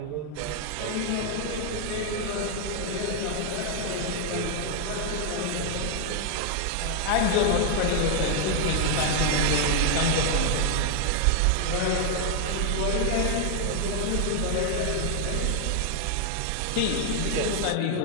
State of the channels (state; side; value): different; both; correlation 0.00